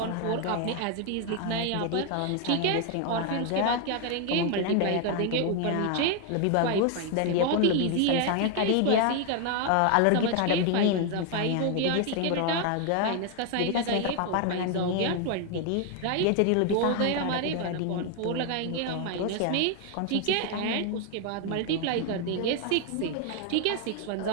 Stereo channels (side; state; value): both; different; correlation 0.01